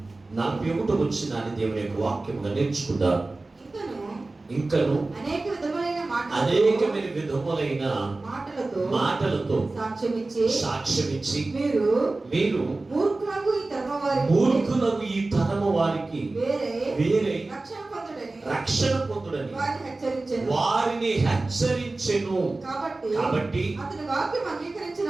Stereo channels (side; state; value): left; quieter; 3.2 dB